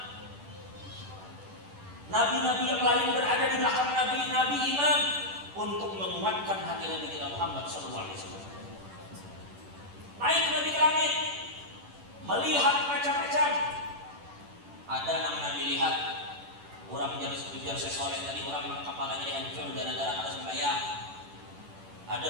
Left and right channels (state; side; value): late; left; 10 ms